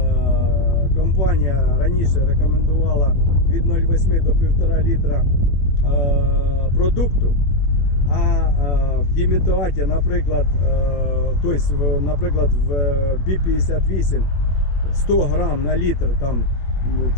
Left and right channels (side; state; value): right; late; 22 ms